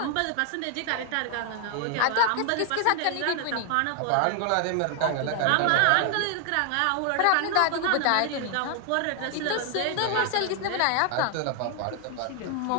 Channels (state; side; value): different; both; correlation 0.00